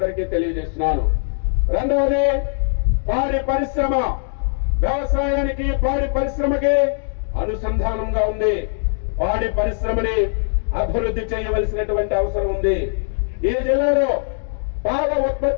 తెలియజేస్తున్నాను. రెండవది పాడి పరిశ్రమ. వ్యవసాయానికి పాడి పరిశ్రమకి అనుసంధానంగా ఉంది. పాడి పరిశ్రమని అభివృద్ధి చేయవలసినటువంటి అవసరం ఉంది. ఈ జిల్లాలో పాల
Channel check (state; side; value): silent; right; digital silence